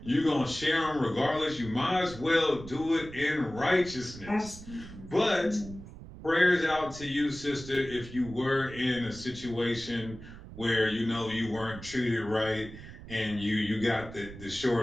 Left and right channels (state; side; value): noise; right; rumble, 15 dB below the sound